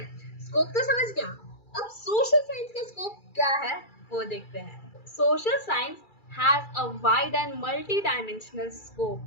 स्कोप तो समझ गया। अब सोशल साइंस का स्कोप क्या है वो देखते हैं। Social science has a wide and multi dimensional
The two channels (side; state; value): right; late; 2.3 ms